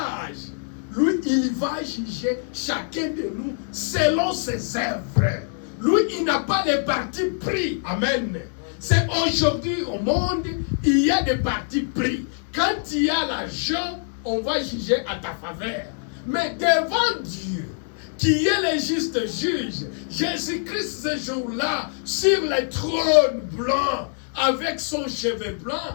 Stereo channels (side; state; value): right; silent; 63 dB below the other